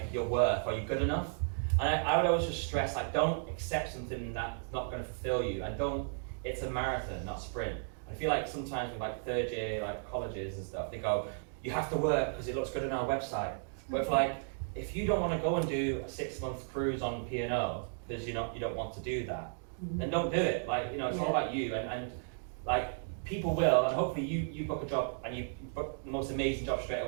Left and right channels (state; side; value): silent; left; digital silence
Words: you're worth, are you good enough? And I would always just stress, like, don't accept something that's not going to fulfill you, and it's a marathon, not a sprint. I feel like sometimes with like third year, like colleges and stuff, they go, you have to work because it looks good on our website. But if you don't want to go and do a 6-month cruise on P&O because you don't want to do that, then don't do it. Like, it's all about you, and like, people will, and hopefully you book a job and you book the most amazing job straight